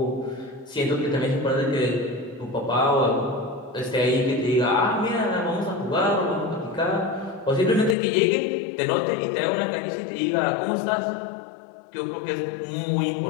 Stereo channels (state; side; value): drops out; right; at 8.0 s